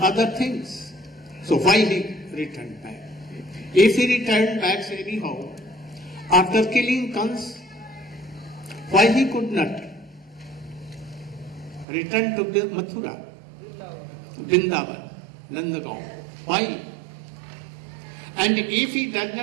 things. So why he returned back? If he returned back anyhow, after killing Kans, why he could not return to Mathura, Vrindavan, Nandagaon? Why? And if he does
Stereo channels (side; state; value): left; drops out; at 11.9 s